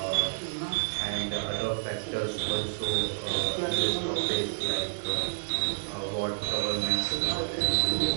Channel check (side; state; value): left; silent; digital silence